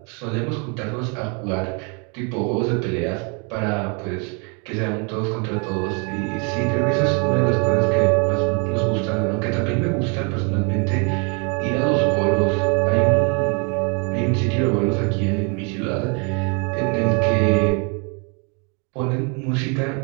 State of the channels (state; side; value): quieter; left; 35.0 dB